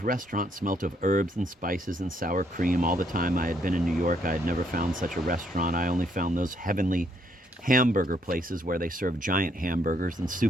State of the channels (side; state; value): both; normal; correlation 0.71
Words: restaurant smelt of herbs and spices and sour cream. All the time I had been in New York, I had never found such a restaurant. I only found those heavenly hamburger places where they serve giant hamburgers and